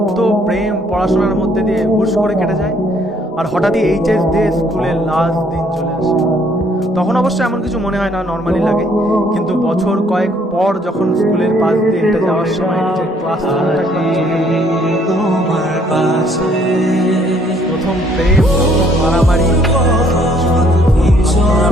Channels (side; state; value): both; normal; correlation 0.64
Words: প্রেম, পড়াশোনার মধ্যে দিয়ে হুশ করে কেটে যায়। আর হঠাৎই এইচএস দিয়ে স্কুলের লাস্ট দিন চলে আসে। তখন অবশ্য এমন কিছু মনে হয় না, নর্মালি লাগে। কিন্তু বছর কয়েক পর যখন স্কুলের পাশ দিয়ে হেঁটে যাওয়ার সময় নিজের ক্লাসরুমটা একবার চোখে পড়ে, প্রথম প্রেম, মারামারি,